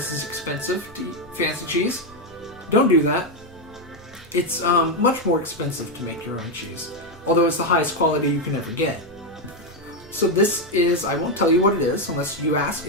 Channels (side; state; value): both; normal; correlation 0.05